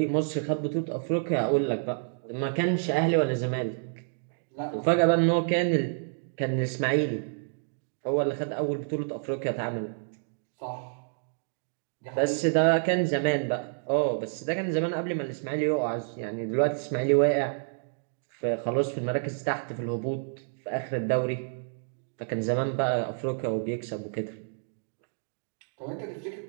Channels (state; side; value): silent; left; digital silence